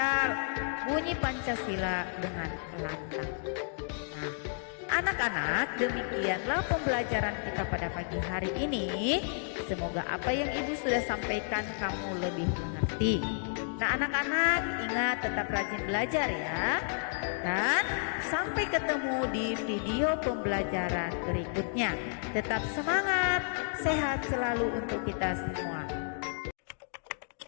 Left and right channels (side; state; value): right; silent; digital silence